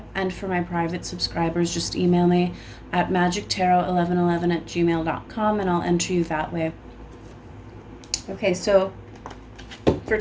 And for my private subscribers, just email me at magictarot1111@gmail.com and I'll enter you that way. Okay, so for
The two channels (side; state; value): both; identical; correlation 1.00